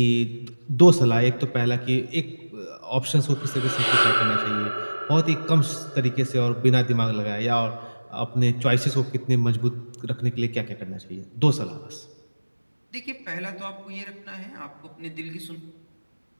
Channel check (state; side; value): inverted; both; correlation -1.00